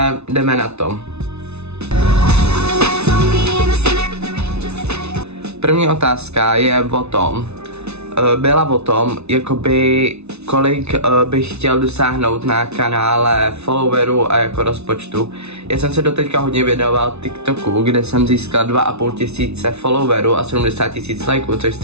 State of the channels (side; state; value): left; late; 0.81 ms